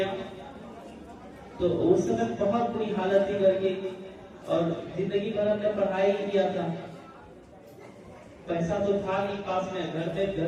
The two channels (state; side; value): identical; both; correlation 1.00